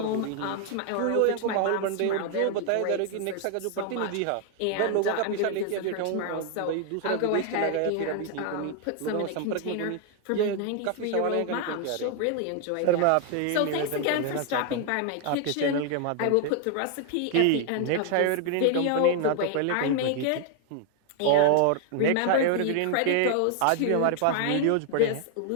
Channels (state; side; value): different; both; correlation 0.00